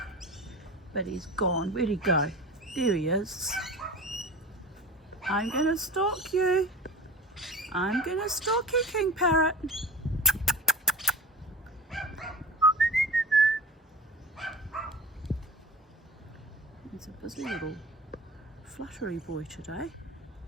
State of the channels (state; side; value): normal; both; correlation 0.34